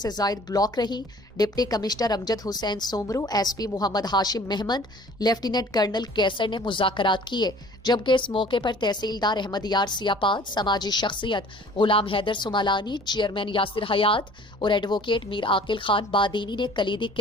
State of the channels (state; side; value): normal; both; correlation 0.50